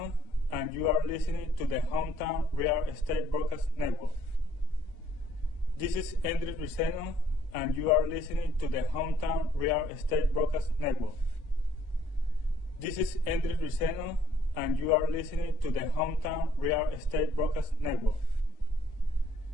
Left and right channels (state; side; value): normal; both; correlation 0.64